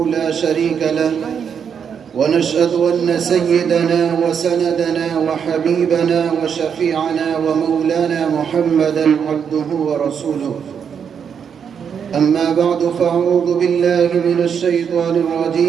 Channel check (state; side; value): quieter; left; 7.3 dB